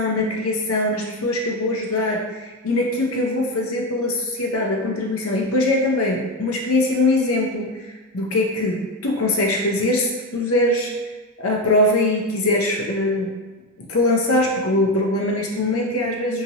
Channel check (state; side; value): normal; both; correlation 0.15